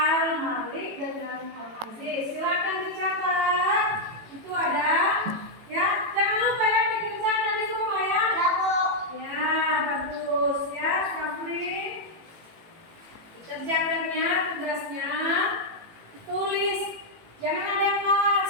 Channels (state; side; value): late; left; 18 ms